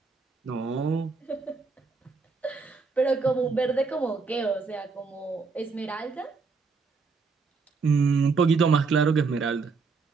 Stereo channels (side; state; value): left; quieter; 4.6 dB